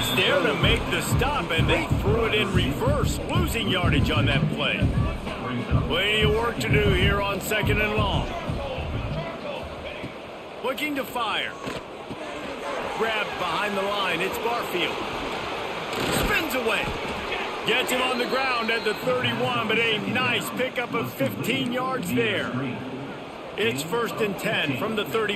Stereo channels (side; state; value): both; identical; correlation 1.00